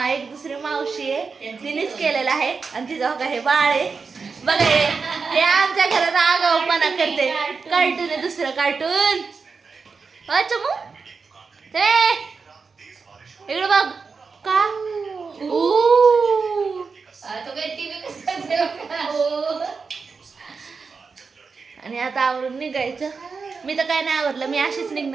दुसरी मावशी आहे, तिनेच केलेलं आहे आणि तिचं बघा हे बाळ आहे बघा, हे आमच्या घरात आगाऊपणा करते। कार्टून आहे, दुसरं कार्टून। अच्छा मग ते इकडं बघ का आणि आता आवरून निघायचं। मी तर काय नाही आवरलं, मी अशीच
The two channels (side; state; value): left; quieter; 4.9 dB